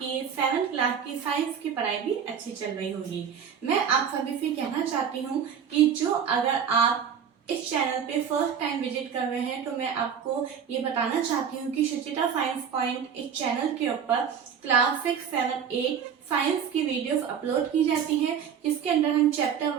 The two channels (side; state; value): left; quieter; 7.6 dB